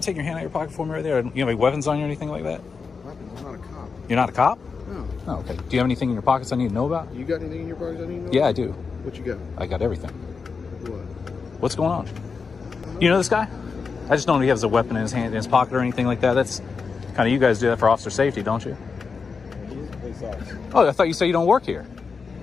take your hand out of your pocket for me right there. You have any weapons on you or anything like that? Weapons? I'm not a cop. You're not a cop? No. Oh, okay. Do you have anything in your pockets I need to know about? You got anything in your pockets I need to know Yeah, about? I do. What you got? I got everything. What? What's going on? You know this guy? I just don't know if he has a weapon in his hand, in his pocket or anything like that. That's kind of, you guys do that for officer safety, don't you? Oh, I thought you said you don't work here.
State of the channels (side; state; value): right; quieter; 5.1 dB